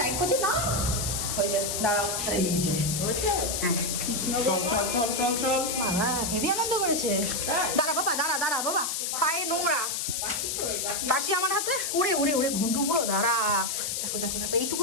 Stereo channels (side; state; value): left; noise; hiss, 1 dB below the sound